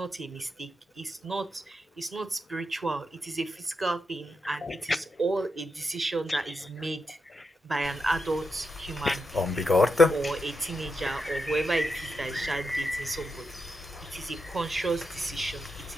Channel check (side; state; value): both; normal; correlation 0.86